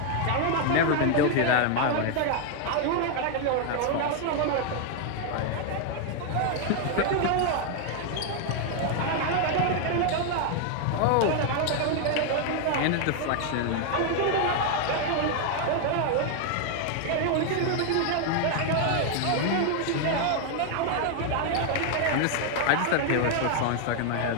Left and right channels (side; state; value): both; different; correlation 0.00